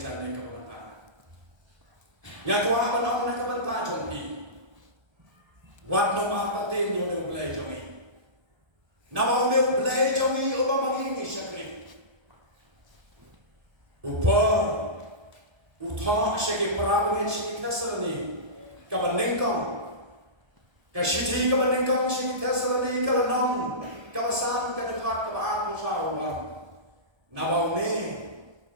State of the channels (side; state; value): left; late; 1.3 ms